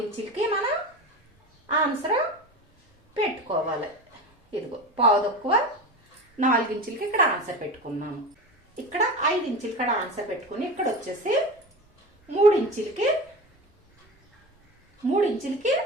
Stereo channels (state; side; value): normal; both; correlation 0.28